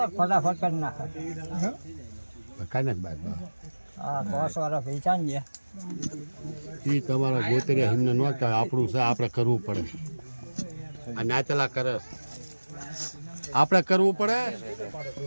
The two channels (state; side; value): inverted; both; correlation -1.00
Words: કાંઈ તમારા ગોતરિયા એમને ન થાય આપણું છે આપણે કરવું પડે આ નાચલા કરે આપણે કરવું પડે